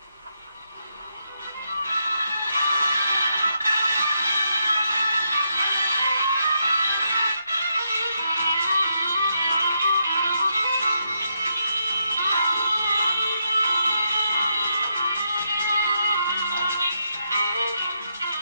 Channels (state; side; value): inverted; both; correlation -0.80